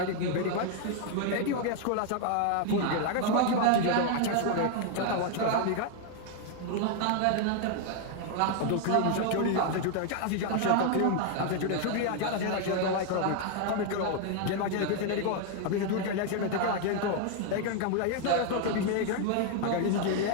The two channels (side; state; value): both; different; correlation 0.00